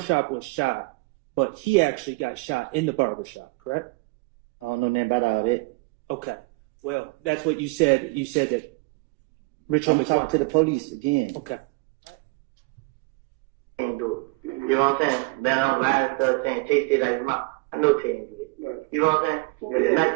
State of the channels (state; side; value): quieter; left; 26.5 dB